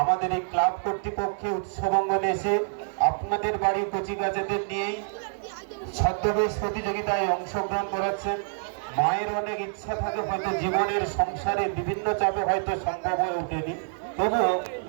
আমাদের এই ক্লাব কর্তৃপক্ষে উৎসব অঙ্গনে এসে আপনাদের বাড়ির কচিকাচাদের নিয়েই ছদ্মবেশ প্রতিযোগিতায় অংশগ্রহণ করাচ্ছেন। মায়ের অনেক ইচ্ছা থাকে, হয়তো জীবনের সংসারে বিভিন্ন চাপে হয়তো সম্ভব হয়ে ওঠেনি, তবুও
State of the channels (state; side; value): silent; left; 60 dB below the other